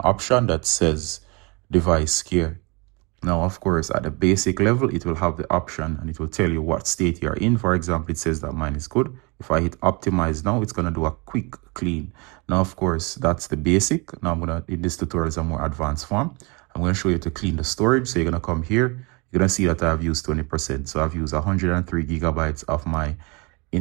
option that says device care. Now, of course, at the basic level, it will have the option and it will tell you what state you're in. For example, it says that mine is good. If I hit optimize now, it's going to do a quick clean. Now, of course, that's the basic. Now, in this tutorial is a more advanced form. I'm going to show you to clean the storage. So you're going to come here. You're going to see that I've used 20%. So I've used 103 gigabytes of my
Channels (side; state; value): left; quieter; 28.8 dB